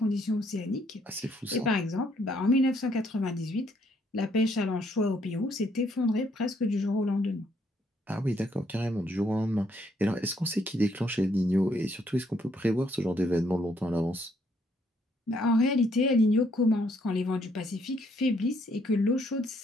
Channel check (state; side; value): normal; both; correlation 0.70